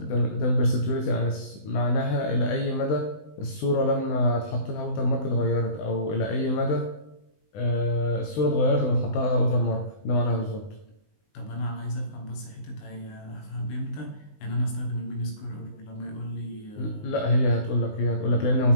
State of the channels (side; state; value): right; late; 19 ms